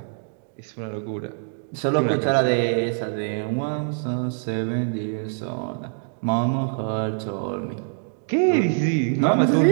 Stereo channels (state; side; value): silent; left; digital silence